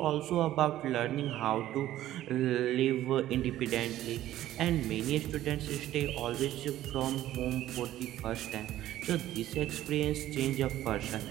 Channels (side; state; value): left; quieter; 13.6 dB